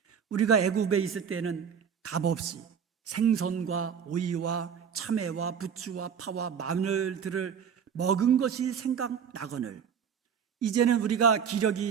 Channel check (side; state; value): left; quieter; 7.4 dB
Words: 우리가 애굽에 있을 때는 값없이 생선과 오이와 참외와 부추와 파와 마늘들을 먹은 것이 생각나거늘 이제는 우리가